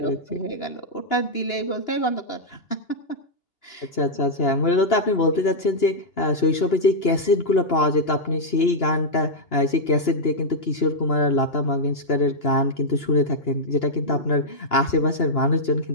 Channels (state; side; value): late; right; 2.8 ms